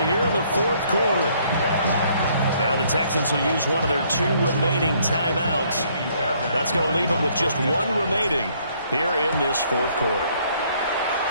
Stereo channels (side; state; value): both; inverted; correlation -0.65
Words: here in the 4th quarter. Now the Texans will use one of their 2 remaining timeouts. That's going to leave them with just one remaining here in this fourth quarter.